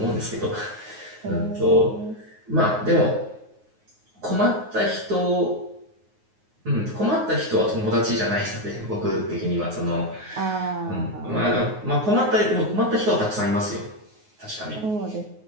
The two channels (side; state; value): left; late; 9.5 ms